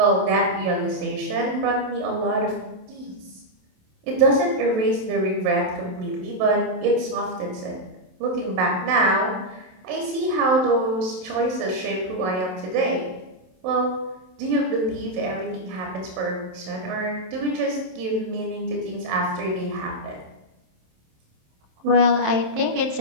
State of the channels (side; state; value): left; late; 27 ms